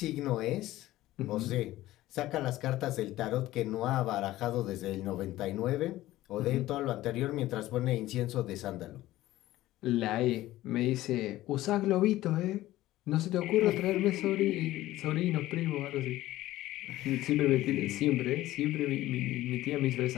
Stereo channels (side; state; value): right; quieter; 15.9 dB